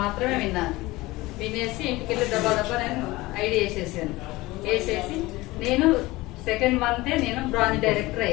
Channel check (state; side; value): quieter; right; 20.1 dB